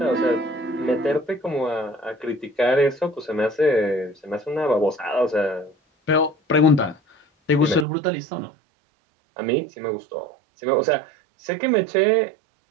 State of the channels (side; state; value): left; drops out; at 7.9 s